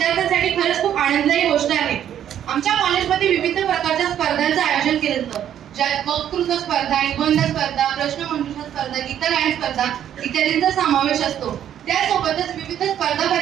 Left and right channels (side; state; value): left; quieter; 10.3 dB